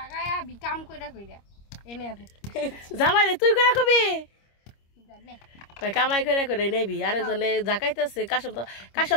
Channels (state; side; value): late; right; 25 ms